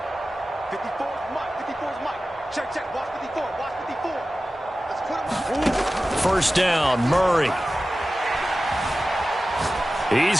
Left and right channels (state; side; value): normal; both; correlation 0.95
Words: First down, Murray. He's